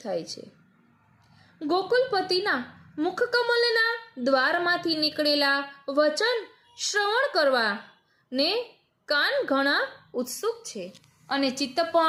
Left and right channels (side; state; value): both; identical; correlation 1.00